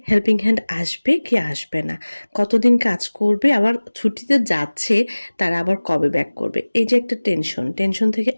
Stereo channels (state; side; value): inverted; both; correlation -1.00